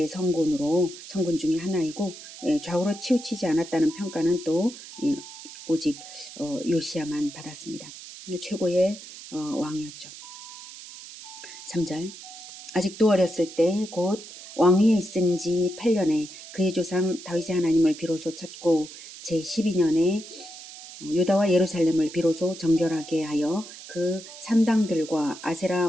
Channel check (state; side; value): noise; right; hiss, 15 dB below the sound